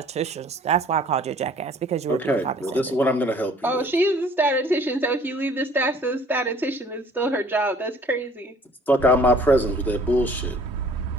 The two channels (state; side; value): normal; both; correlation 0.53